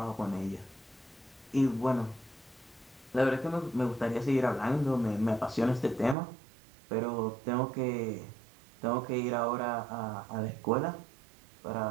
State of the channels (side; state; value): left; drops out; at 6.2 s